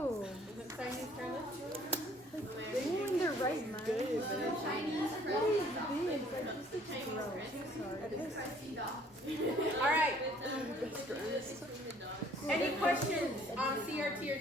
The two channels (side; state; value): both; normal; correlation 0.59